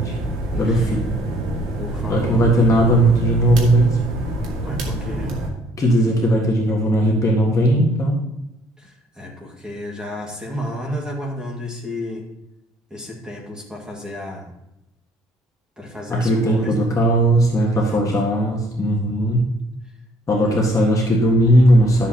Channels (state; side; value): normal; both; correlation 0.62